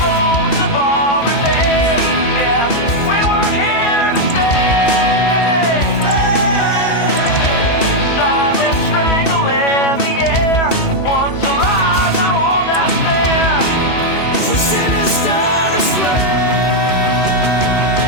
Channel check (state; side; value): late; right; 2.7 ms